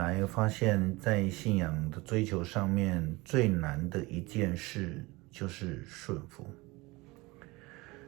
发现在信仰的追求上面最难的一件事就是顺服。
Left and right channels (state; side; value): quieter; left; 22.8 dB